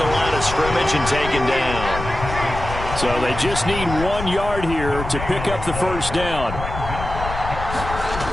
line of scrimmage and taken down. So they just need 1 yard here to pick up the first down.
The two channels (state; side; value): noise; left; rumble, 7 dB below the sound